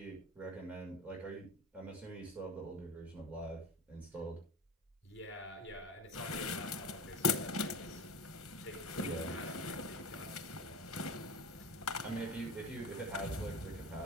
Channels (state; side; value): normal; both; correlation 0.31